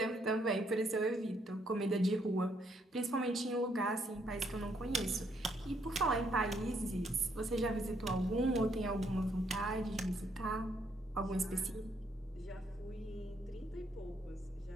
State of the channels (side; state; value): both; normal; correlation 0.72